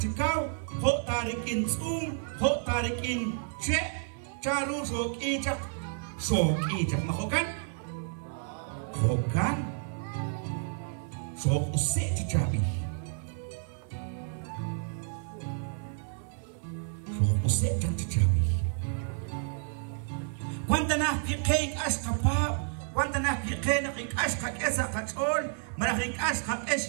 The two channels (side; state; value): left; silent; 57 dB below the other